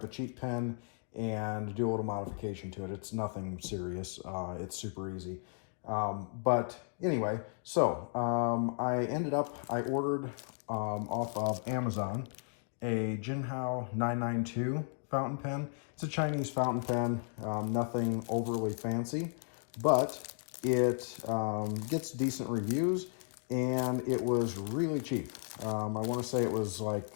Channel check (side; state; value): right; silent; 55 dB below the other